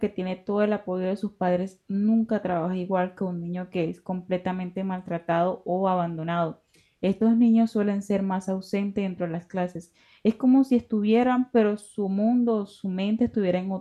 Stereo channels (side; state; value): both; identical; correlation 1.00